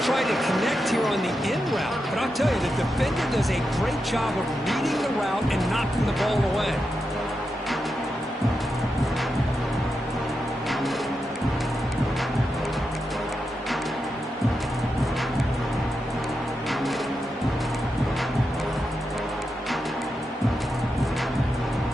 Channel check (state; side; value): normal; both; correlation 0.87